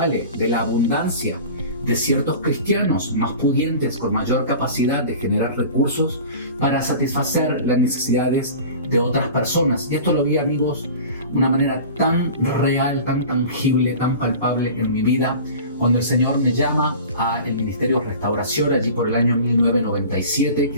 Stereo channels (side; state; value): both; inverted; correlation -0.39